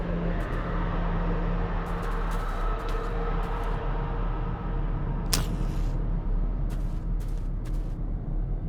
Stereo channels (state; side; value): identical; both; correlation 1.00